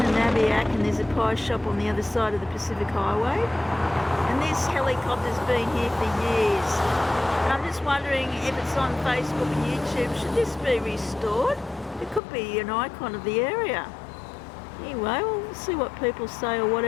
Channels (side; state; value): right; drops out; at 12.2 s